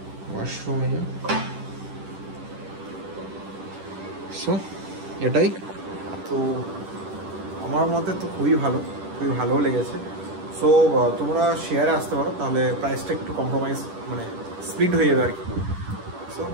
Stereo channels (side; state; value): left; late; 10 ms